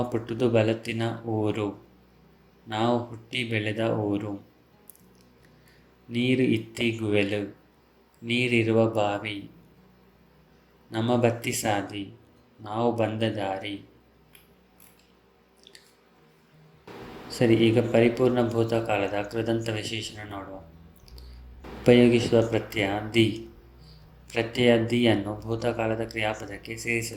ಪುಟ್ಟುದು ಬಲತ್ತಿನ ಊರು ನಾವು ಹುಟ್ಟಿ ಬೆಳೆದ ಊರು. ನೀರು ಇತ್ತಿ ಗುವೆಲು ನೀರಿರುವ ಬಾವಿ. ನಮ್ಮ ಬತ್ತಿ ಸಾದಿ ನಾವು ಬಂದ ದಾರಿ. ಸರಿ, ಈಗ ಪರಿಪೂರ್ಣ ಭೂತಕಾಲದ ಕೃದಂತ ವಿಶೇಷಣ ನೋಡುವ. ಉಪಯೋಗಿಸುವ ಪ್ರತ್ಯಯ ದಿ. ಪ್ರತ್ಯಯ ದಿಯನ್ನು ಭೂತಕಾಲದ ಕ್ರಿಯಾಪದಕ್ಕೆ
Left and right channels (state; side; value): identical; both; correlation 1.00